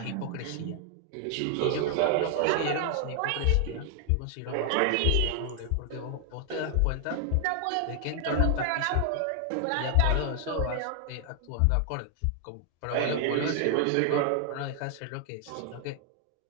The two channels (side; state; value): both; different; correlation 0.00